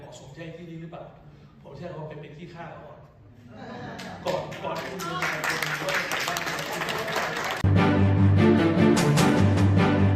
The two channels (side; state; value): both; identical; correlation 1.00